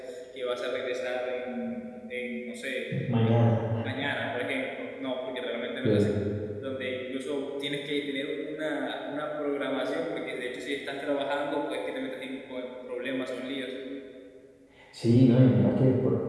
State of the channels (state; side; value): identical; both; correlation 1.00